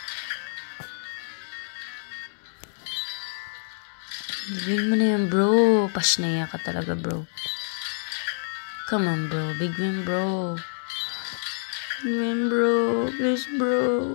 Big win mo na yan, bro. Pasnaya ka talaga, bro. Come on, bro. Big win, bro. Big win, bro. Please, bro.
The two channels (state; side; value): silent; right; 60 dB below the other